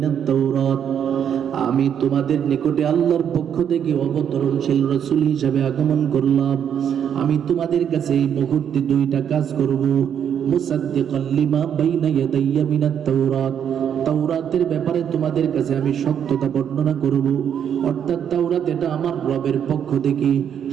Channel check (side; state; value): left; quieter; 8.6 dB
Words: তাওরাত। আমি তোমাদের নিকটে আল্লাহর পক্ষ থেকে অবতরণশীল রাসূল হিসেবে আগমন করলাম। আমি তোমাদের কাছে এই মুহূর্তে দুইটা কাজ করব। মুসাদ্দিকান লিমা বাইনা ইয়াদাইয়া মিনাত তাওরাত, তাওরাতের ব্যাপারে তোমাদের কাছে আমি সত্যতা বর্ণনা করব, অর্থাৎ তাওরাত এটা আমার রবের পক্ষ থেকে